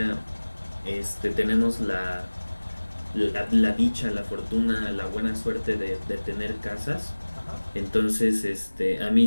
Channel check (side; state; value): both; inverted; correlation -1.00